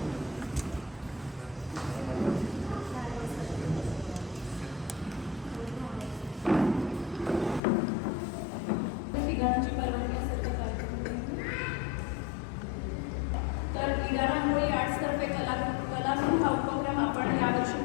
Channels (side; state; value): right; drops out; at 7.6 s